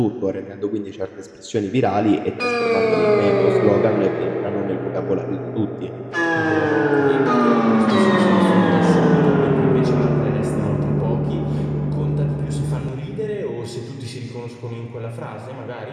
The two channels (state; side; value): identical; both; correlation 1.00